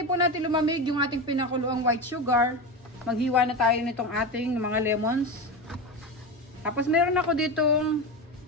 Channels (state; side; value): normal; both; correlation 0.21